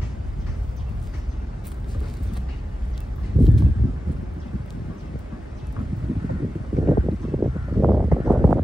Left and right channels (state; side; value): normal; both; correlation 0.93